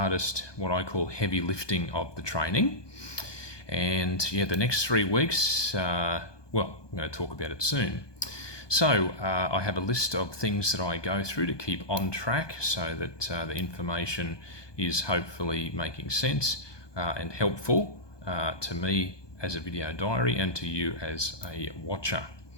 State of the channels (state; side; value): late; right; 1.2 ms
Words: what I call heavy lifting of the training. And yeah, the next 3 weeks, I'm going to talk about it soon. So I have a list of things that I go through to keep on track so that the information is hopefully making sense and helpful to me as a video diary and to you as a watcher.